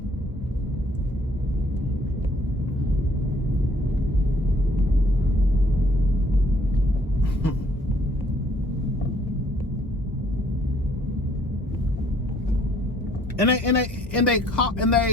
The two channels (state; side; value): normal; both; correlation 0.62